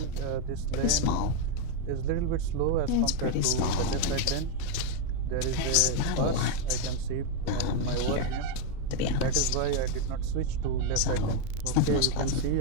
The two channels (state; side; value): different; both; correlation 0.02